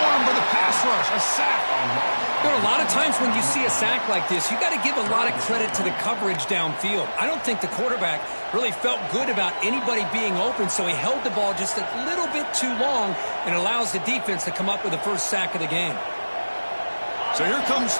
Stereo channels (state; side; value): inverted; both; correlation -1.00